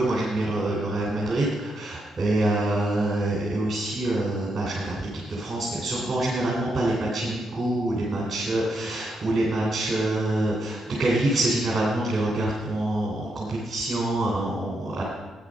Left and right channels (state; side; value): normal; both; correlation 0.81